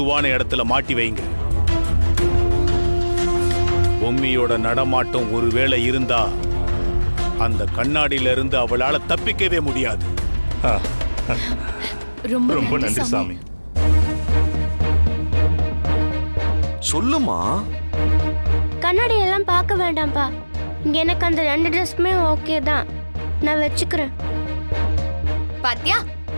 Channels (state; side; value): inverted; both; correlation -1.00